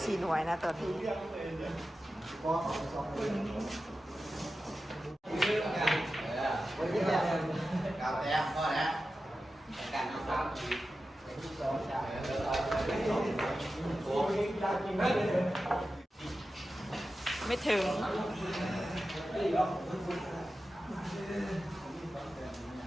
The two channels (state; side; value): normal; both; correlation 0.93